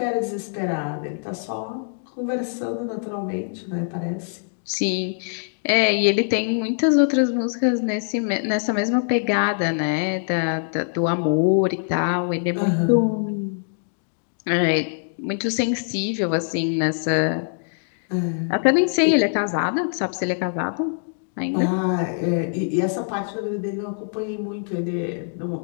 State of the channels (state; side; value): silent; right; digital silence